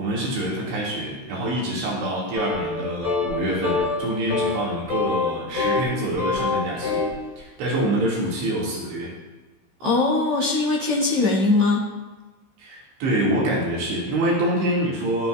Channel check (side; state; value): left; late; 15 ms